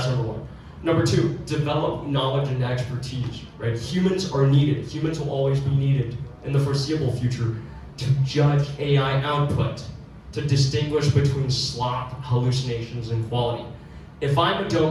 number 1. Number 2, develop knowledge and expertise, right? Humans are needed. Humans will always be needed in the foreseeable future to judge AI output, to distinguish between slop, hallucinations, and quality. If I'm a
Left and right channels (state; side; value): identical; both; correlation 1.00